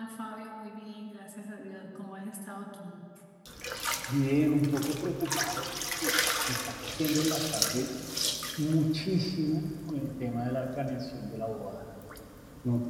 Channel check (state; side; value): identical; both; correlation 1.00